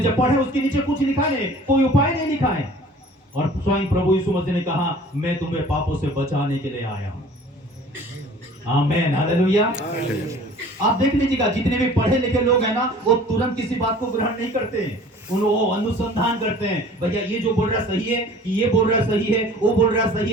जब पढ़े उसके नीचे कुछ लिखा नहीं, कोई उपाय नहीं लिखा है। और स्वयं प्रभु यीशु मसीह ने कहा, मैं तुम्हें पापों से बचाने के लिए आया हूं। आमेन, हालेलुया। आप देख लीजिएगा, जितने भी पढ़े लिखे लोग हैं ना, वो तुरंत किसी बात को ग्रहण नहीं करते हैं, वो अनुसंधान करते हैं, भैया ये जो बोल रहा सही है, ये बोल रहा सही है, वो बोल रहा सही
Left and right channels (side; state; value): both; normal; correlation 0.48